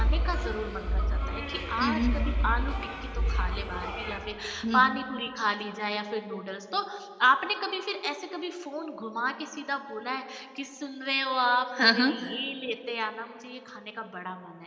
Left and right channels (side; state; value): both; identical; correlation 1.00